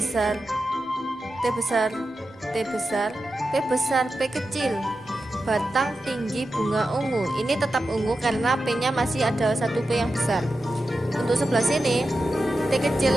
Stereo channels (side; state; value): both; normal; correlation 0.91